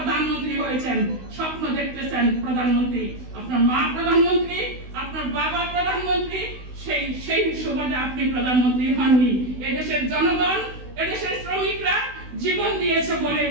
হয়েছেন, স্বপ্ন দেখতেছেন প্রধানমন্ত্রী। আপনার মা প্রধানমন্ত্রী, আপনার বাবা প্রধানমন্ত্রী, সেই সুবাদে আপনি প্রধানমন্ত্রী হননি। এদেশের জনগণ, এদেশের শ্রমিকরা জীবন দিয়েছে বলে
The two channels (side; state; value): left; late; 16 ms